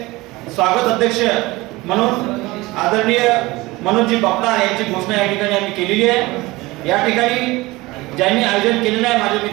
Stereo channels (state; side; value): quieter; left; 20.8 dB